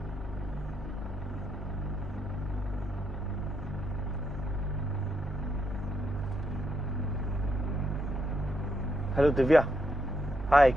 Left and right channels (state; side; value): normal; both; correlation 0.79